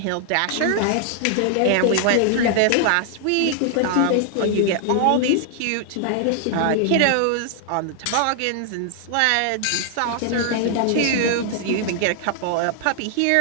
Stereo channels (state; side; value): different; both; correlation 0.00